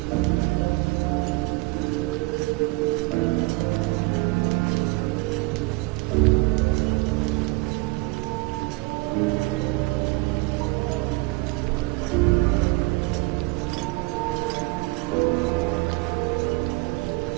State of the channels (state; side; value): quieter; left; 24.5 dB